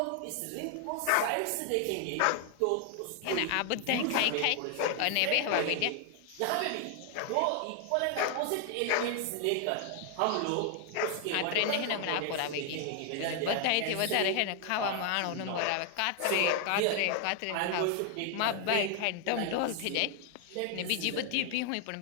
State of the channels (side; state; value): both; different; correlation 0.00